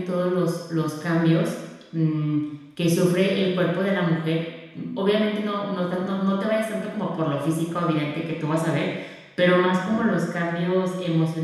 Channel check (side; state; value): both; identical; correlation 1.00